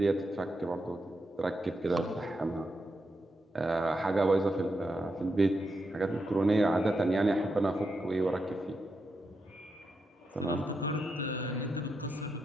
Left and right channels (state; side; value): normal; both; correlation 0.85